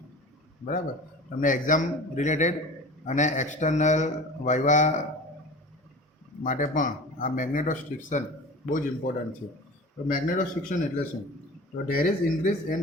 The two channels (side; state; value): both; normal; correlation 0.36